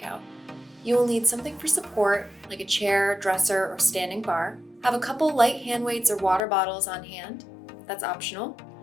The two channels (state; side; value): drops out; right; at 6.4 s